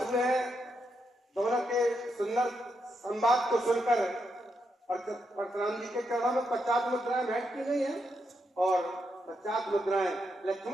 हुए हैं दोनों के सुंदर संवाद को सुनकर। परशुराम जी के चरणों में 50 मुद्राएं भेंट की गई हैं और 50 मुद्राएं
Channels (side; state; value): both; normal; correlation 0.82